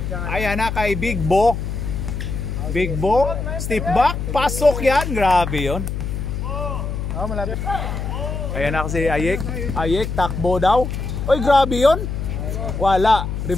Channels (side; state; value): left; noise; hum, 4 dB below the sound